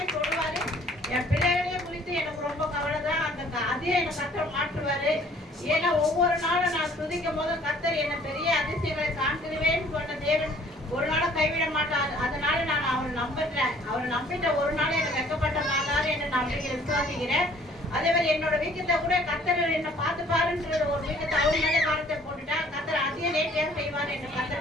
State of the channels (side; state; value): both; normal; correlation 0.56